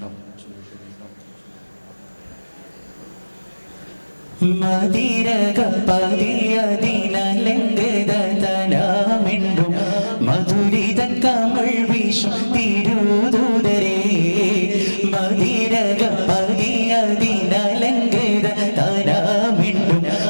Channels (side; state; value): both; inverted; correlation -1.00